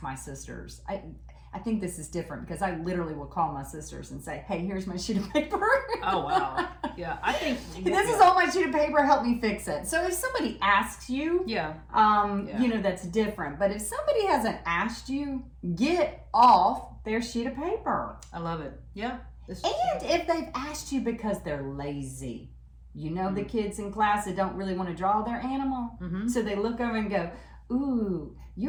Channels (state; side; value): identical; both; correlation 1.00